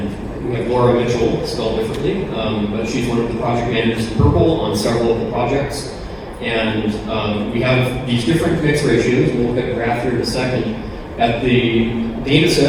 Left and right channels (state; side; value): identical; both; correlation 1.00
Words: we have Laura Mitchell, spelled differently, but she's one of the project managers in Purple on several of the projects. And we have these different mix ratios. We'll look at a graph here in a second. At the data